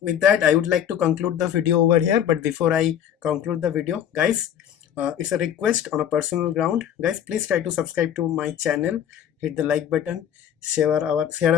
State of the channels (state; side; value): quieter; right; 9.6 dB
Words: with that I would like to conclude the video over here. But before I conclude the video, guys, it's a request on a personal ground. Guys, please try to subscribe to my channel, hit the like button, share our